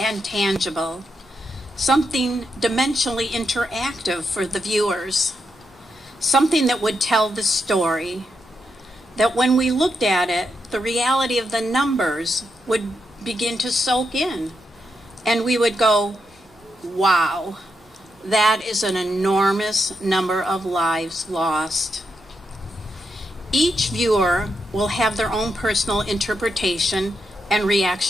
tangible. Something dimensionally interactive for the viewers. Something that would tell the story. That when we looked at it, the reality of the numbers would begin to soak in. And we would go, wow, that is an enormous number of lives lost. Each viewer will have their own personal interpretation and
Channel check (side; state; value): both; normal; correlation 0.83